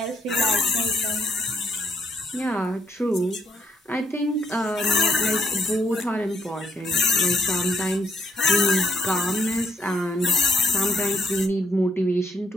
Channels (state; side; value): normal; both; correlation 0.71